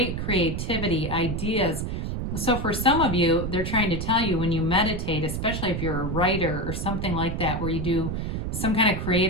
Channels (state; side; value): noise; right; rumble, 3 dB below the sound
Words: creativity, ideas. So for some of you, they're trying to tell you when you meditate, especially if you're a writer or something like that, where you do some kind of